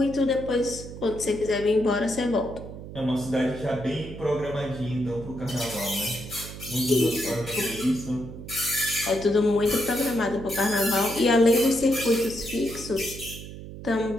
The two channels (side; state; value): right; noise; hum, 12 dB below the sound